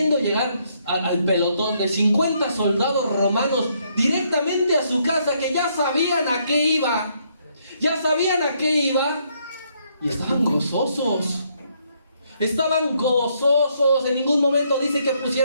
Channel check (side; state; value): both; inverted; correlation -0.72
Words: llegar al pelotón de 50 soldados romanos directamente a su casa, que ya sabían a qué iba. Ya sabían a qué iba. Y estaban gozosos. Estaban gozosos. En ningún momento dice que